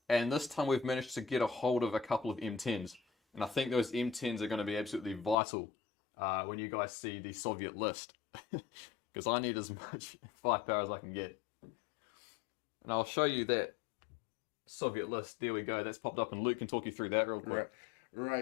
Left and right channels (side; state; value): right; drops out; at 5.4 s